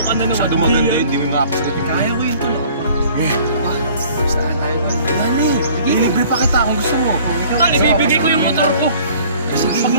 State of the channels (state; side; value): inverted; both; correlation -0.52